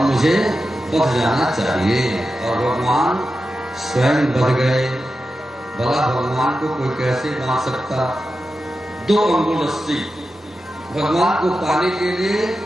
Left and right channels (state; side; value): normal; both; correlation 0.91